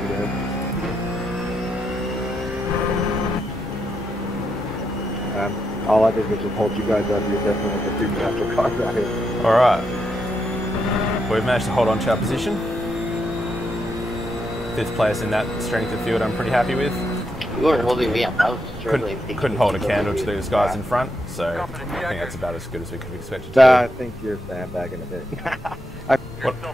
today. All I did was just hold you guys up. You're definitely the two natural cars out here. All right. We've managed to hold on to our position. 5th place in that strength of field I'm pretty happy with. You weren't holding me up. I was struggling. Couldn't hold a candle to these guys in front, so I think that's about as good as we could have expected to I think you're sandbagging a bit. I You're still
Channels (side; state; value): both; normal; correlation 0.82